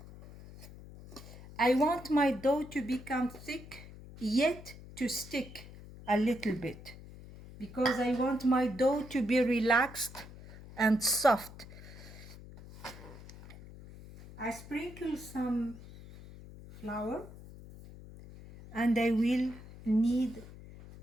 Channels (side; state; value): left; noise; hum, 17 dB below the sound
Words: I want my dough to become thick, yet to stick a little bit, because I want my dough to be relaxed and soft. I sprinkle some flour, and I will knead